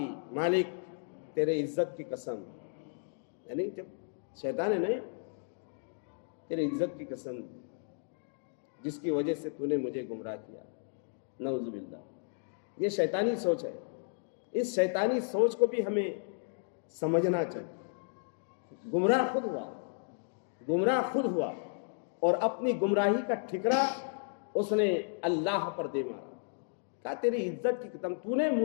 مالک تیرے عزت کی قسم، یعنی جب شیطان ہے نہیں، تیرے عزت کی قسم جس کی وجہ سے تو نے مجھے گمراہ کیا، نعوذ باللہ۔ یہ شیطانی سوچ ہے، اس شیطانی سوچ کو بھی ہمیں سمجھنا چاہیے۔ گمراہ خود ہوا اور اپنی گمراہی کا ٹھکرا اس نے اللہ پر دے مارا، کہا تیری عزت کی قسم تو نے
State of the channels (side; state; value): right; silent; digital silence